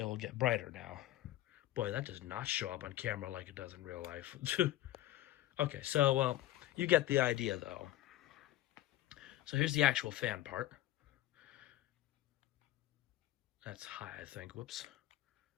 will get brighter now. Boy, that does not show up on camera like it does in real life. Okay, so, well, you get the idea, though. So here's the actual fan part. That's high, I think. Whoops.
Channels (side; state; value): right; quieter; 15.1 dB